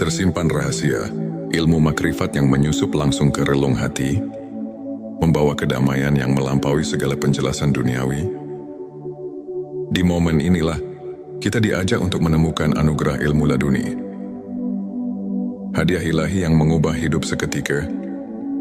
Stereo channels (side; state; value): both; identical; correlation 1.00